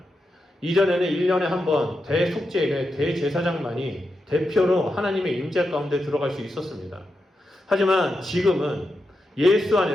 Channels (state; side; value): normal; both; correlation 0.87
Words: 이전에는 1년에 한 번 대속죄일에 대제사장만이 대표로 하나님의 임재 가운데 들어갈 수 있었습니다. 하지만 지금은 예수